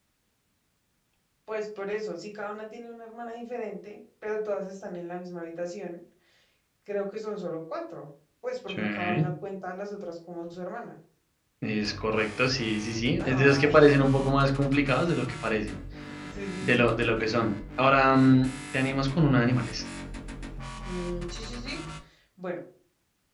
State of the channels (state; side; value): identical; both; correlation 1.00